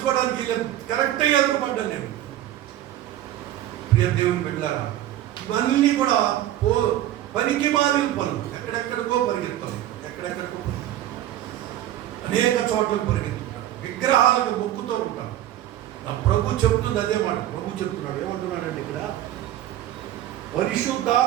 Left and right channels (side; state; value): left; quieter; 12.9 dB